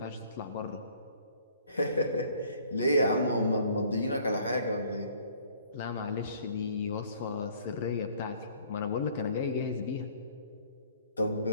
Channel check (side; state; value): both; inverted; correlation -0.57